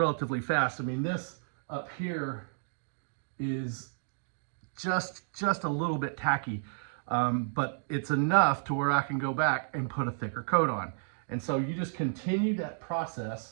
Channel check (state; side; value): silent; left; digital silence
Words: fast. I mean, this up here is just a little bit tacky, but it's enough to where I can go back and put a thicker coat on. And so you just continue that